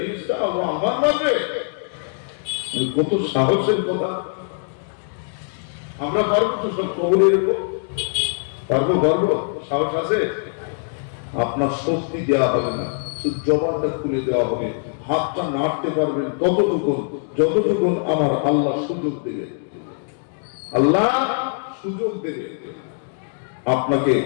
আমার নামে। কত সাহসের কথা! আমরা পারবো তো সব কবরে রেখো? পারবো? সাহস আছে? আপনার শক্তি দেওয়া হবে না, শুধু জবানটা খুলে দেওয়া হবে, হাতটা নাড়তে পারবেন যতটুকুন আমার আল্লাহ সুযোগ দেবে। আল্লাহ সুযোগ দেবে। আপনাকে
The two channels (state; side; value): silent; right; digital silence